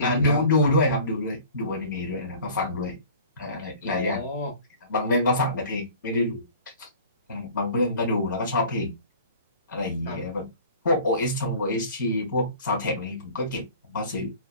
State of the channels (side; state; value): both; inverted; correlation -0.45